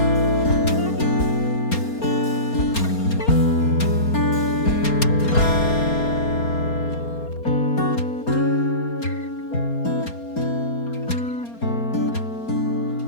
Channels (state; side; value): late; right; 4.3 ms